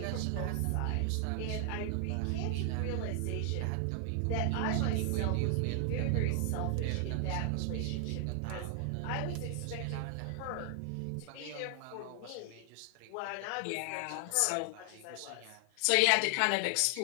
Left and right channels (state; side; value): different; both; correlation 0.00